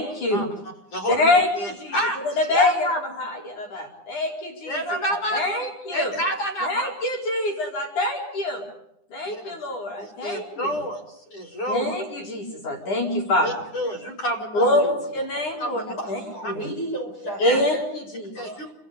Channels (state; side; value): late; right; 9.9 ms